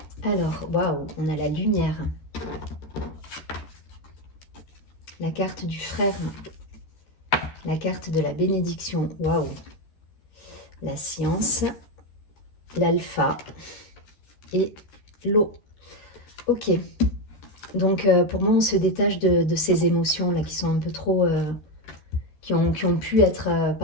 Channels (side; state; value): right; late; 13 ms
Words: Alors, waouh, on a la lumière. La carte du frère. La carte de la bénédiction. Waouh. La science. L'alpha. Et l'eau. Ok. Donc, pour moi, on se détache de ces émotions-là qui sont un peu trop... qui ont pu être